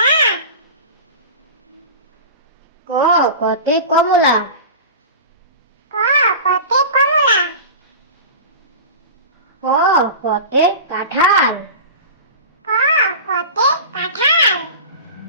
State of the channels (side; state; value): both; inverted; correlation -0.32